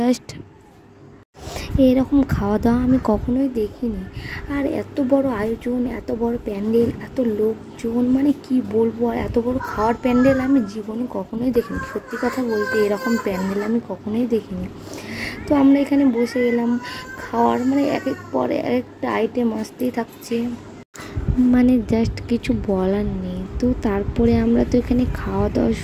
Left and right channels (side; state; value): both; identical; correlation 1.00